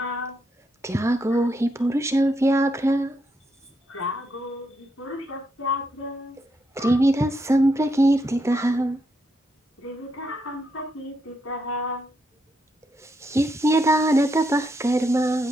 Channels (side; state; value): both; normal; correlation 0.79